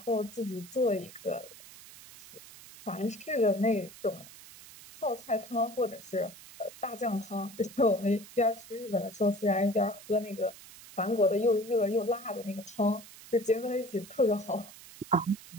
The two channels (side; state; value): right; noise; hiss, 18 dB below the sound